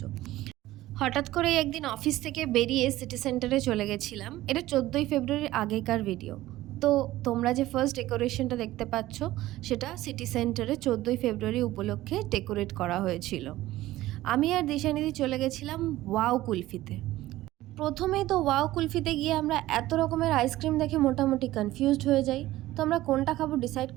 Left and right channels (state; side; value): quieter; left; 16.1 dB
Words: হঠাৎ করে একদিন অফিস থেকে বেরিয়ে সিটি সেন্টারে চলে গেছিলাম। এটা 14ই ফেব্রুয়ারির আগেকার ভিডিও। তো তোমরা যে ফার্স্ট ডেকোরেশনটা দেখতে পাচ্ছ সেটা সিটি সেন্টারে 14ই ফেব্রুয়ারি উপলক্ষে ডেকোরেট করা হয়েছিল। আমি আর দিশানিধি চলে গেছিলাম ওয়াও কুলফিতে। প্রথমেই তো ওয়াও কুলফিতে গিয়ে আমরা এত রকমের আইসক্রিম দেখে মোটামুটি কনফিউজড হয়ে যাই, তো আমরা কোনটা খাবো ডিসাইড